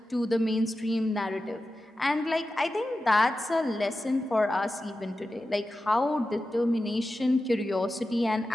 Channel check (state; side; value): normal; both; correlation 0.93